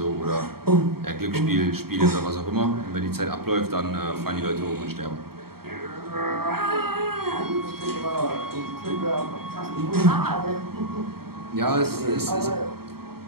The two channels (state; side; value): late; left; 0.95 ms